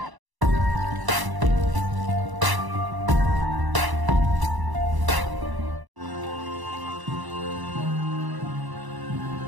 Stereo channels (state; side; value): late; left; 1.0 ms